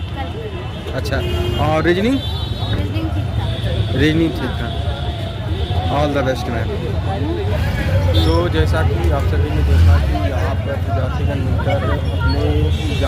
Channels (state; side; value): identical; both; correlation 1.00